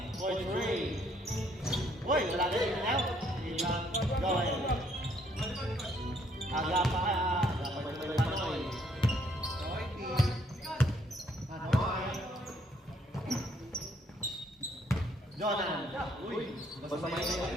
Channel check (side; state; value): both; normal; correlation 0.67